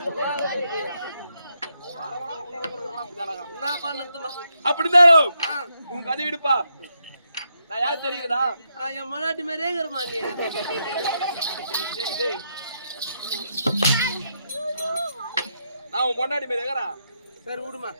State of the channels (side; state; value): both; inverted; correlation -0.80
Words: அப்படிதான் உன் கதை விடுப்பா. நான் யார் தெரியுதா? என் மனாட்டி மாதிரியே இருக்கிறமா நீ. நான் உன் முன்னாடி மாதிரி இருக்கிறேன். சரி விடுமா.